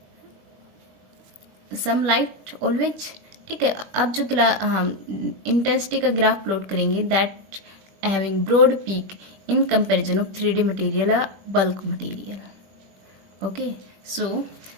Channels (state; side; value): late; left; 21 ms